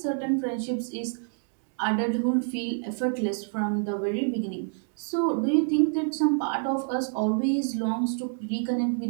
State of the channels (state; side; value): silent; left; 60 dB below the other